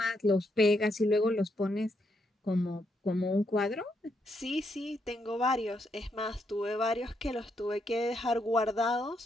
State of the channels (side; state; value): both; normal; correlation 0.78